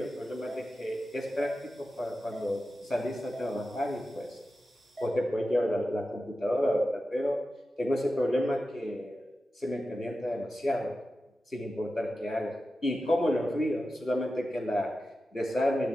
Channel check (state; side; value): normal; both; correlation 0.92